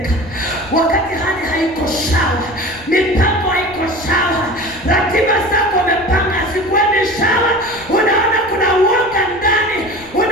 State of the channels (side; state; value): left; noise; rumble, 22 dB below the sound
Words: hali haiko sawa, mipango haiko sawa, ratiba zako umepanga zikuendi sawa, unaona kuna uoga ndani,